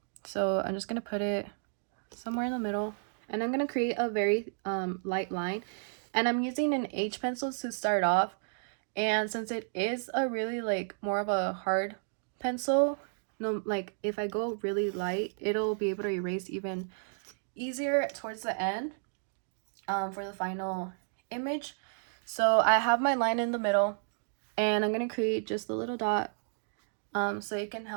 So I'm just gonna put it somewhere in the middle, and I'm gonna create a very light line, and I'm using an H pencil to start off. And since it is a really like more of a hard pencil, no, like if I go really light, it'll be able to erase even easier towards the end for the final image. So I have my line in the middle, and I'm gonna create just a little dot so it can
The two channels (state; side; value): silent; left; digital silence